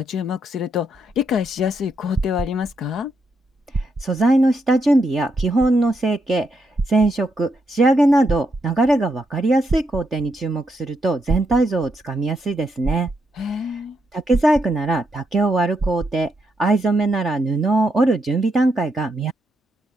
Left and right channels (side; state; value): both; normal; correlation 0.80